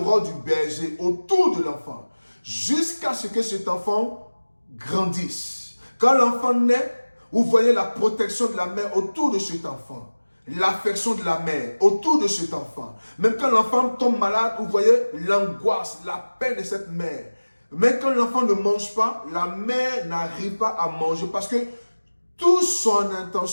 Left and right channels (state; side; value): inverted; both; correlation -1.00